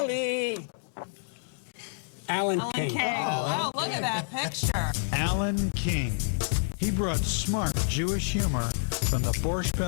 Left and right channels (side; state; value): right; silent; digital silence